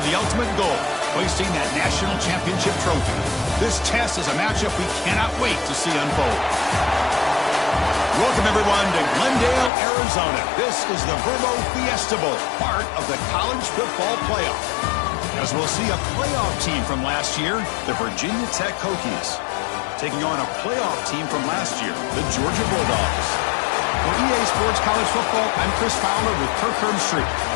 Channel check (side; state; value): right; drops out; at 9.7 s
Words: the ultimate goal, hoisting that national championship trophy. This test is a matchup we cannot wait to see unfold. Welcome, everyone, to Glendale, Arizona. This is the Verbo Fiesta Bowl, part of the college football playoff. As we'll see a playoff team from last year, the Virginia Tech Hokies, taking on a playoff team from last year, the Georgia Bulldogs. For EA Sports College Football, I'm Chris Fowler with Kirk Herbstreit.